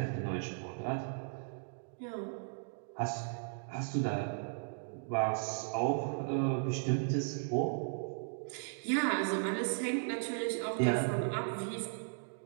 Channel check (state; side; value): silent; left; digital silence